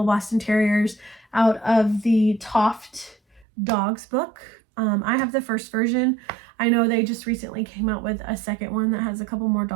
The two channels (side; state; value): left; drops out; at 3.5 s